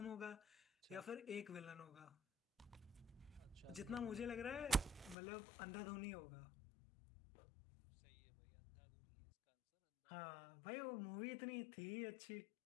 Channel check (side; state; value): right; drops out; at 5.2 s